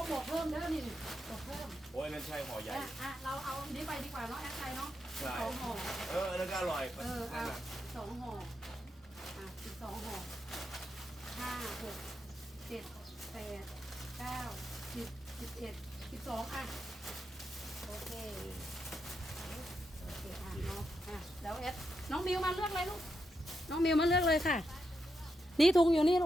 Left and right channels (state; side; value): normal; both; correlation 0.84